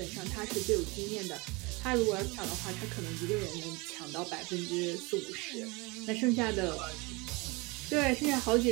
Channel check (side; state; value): left; quieter; 26.1 dB